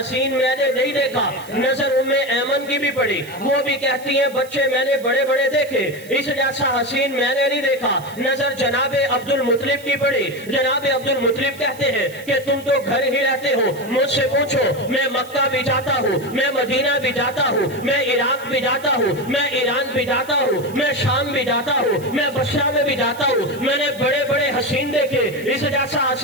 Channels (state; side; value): noise; right; hiss, 20 dB below the sound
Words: میں نے نہیں دیکھا۔ نظر ام ایمن کی بھی پڑی، وہ بھی کہتی ہیں بچے میں نے بڑے بڑے دیکھے، اس جیسا حسین میں نے نہیں دیکھا۔ نظر جناب عبد المطلب کی پڑی، جناب عبد المطلب کہتے ہیں کہ تم تو گھر ہی رہتے ہو، مجھ سے پوچھو میں مکہ بھی جاتا ہوں، میں مدینہ بھی جاتا ہوں، میں عراق بھی جاتا ہوں، میں ایران بھی جاتا ہوں، میں شام بھی جاتا ہوں، میں بصرہ میں بھی جاتا ہوں، میں نے بڑے بڑے حسین دیکھے، اس جیسا